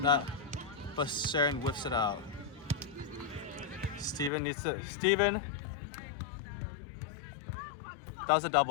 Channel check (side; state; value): right; drops out; at 4.3 s